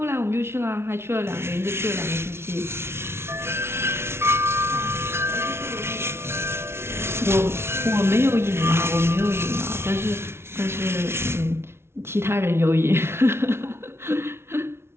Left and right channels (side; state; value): left; late; 0.12 ms